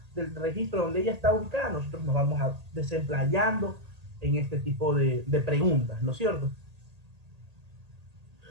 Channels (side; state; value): left; late; 1.8 ms